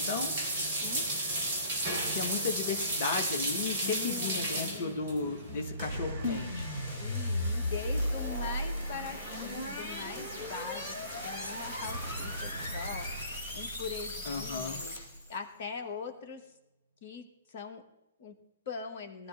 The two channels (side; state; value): both; inverted; correlation -0.49